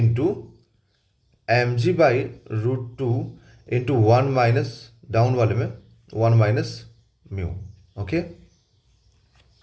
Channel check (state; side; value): identical; both; correlation 1.00